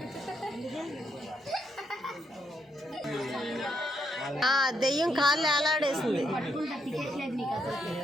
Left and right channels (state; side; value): normal; both; correlation 0.76